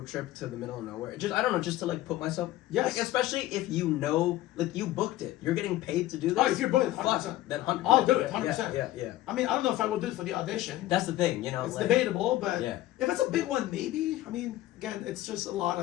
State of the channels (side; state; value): right; quieter; 15.5 dB